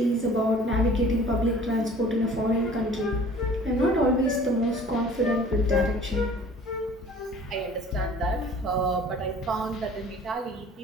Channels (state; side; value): normal; both; correlation 0.49